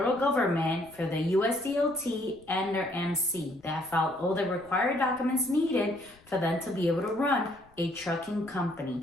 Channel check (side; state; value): left; noise; rumble, 28 dB below the sound